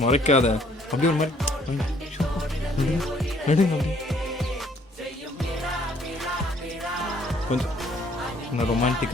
முறைக்காத அப்படியே ஒரு மாதிரி கொஞ்சம் நான்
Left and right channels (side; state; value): both; normal; correlation 0.62